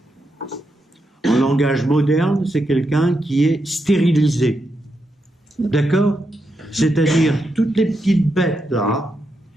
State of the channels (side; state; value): both; normal; correlation 0.84